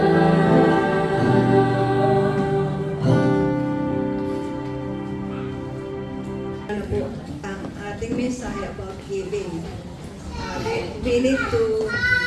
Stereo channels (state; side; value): identical; both; correlation 1.00